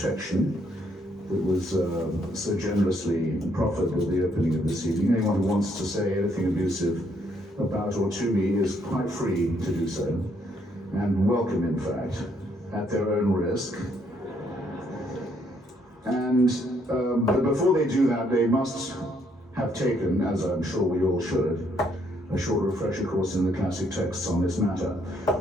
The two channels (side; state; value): both; normal; correlation 0.70